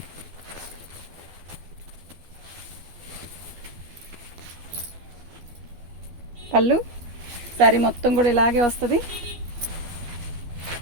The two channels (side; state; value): left; late; 12 ms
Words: పళ్ళు. శారీ మొత్తం కూడా ఇలాగే వస్తుంది.